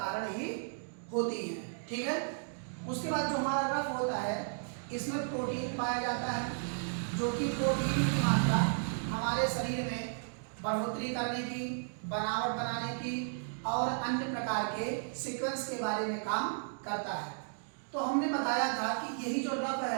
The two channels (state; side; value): silent; left; digital silence